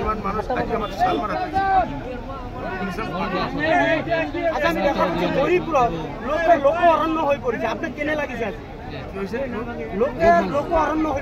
ইমান মানুহ আজি আমাৰ চালমাৰা হৰিপুৰত লোক অৰণ্য হৈ পৰিছে আপোনাক কেনে লাগিছে লোক অৰণ্য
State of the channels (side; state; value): both; identical; correlation 1.00